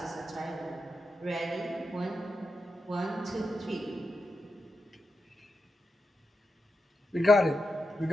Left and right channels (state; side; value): normal; both; correlation 0.87